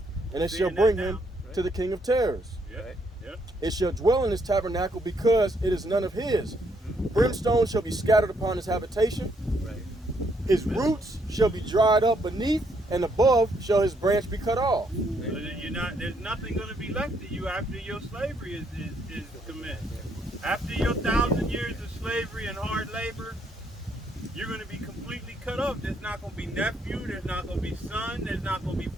and it shall Seeing that bring now, him right? to the king of terrors. Yeah. Right. Yeah. It shall dwell in his tabernacle because it is none of his. Brimstone shall be scattered upon his habitation. Right. His roots shall be dried up beneath, and above shall his branch be cut off. So you're not. There's nothing going to be left of you after your slavery is commenced. After your 1,000 years of slavery and hard labor, you're going to be completely cut off. There's not going to be nephew. There's not going to be son. There's not going to be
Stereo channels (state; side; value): normal; both; correlation 0.72